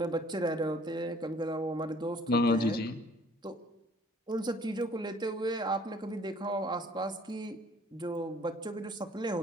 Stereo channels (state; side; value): normal; both; correlation 0.56